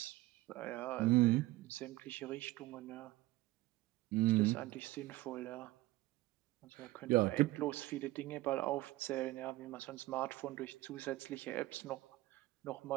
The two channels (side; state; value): left; quieter; 18.3 dB